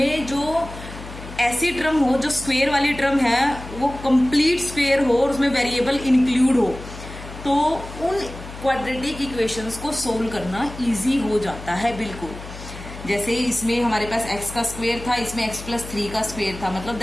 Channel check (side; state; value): left; noise; hum, 13 dB below the sound